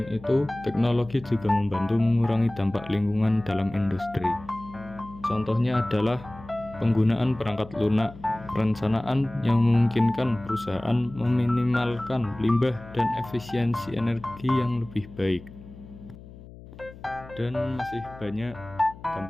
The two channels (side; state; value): left; noise; hum, 18 dB below the sound